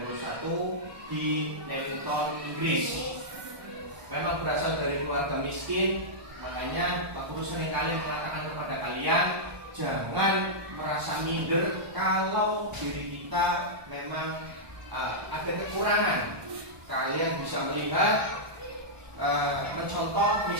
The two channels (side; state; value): left; late; 1.2 ms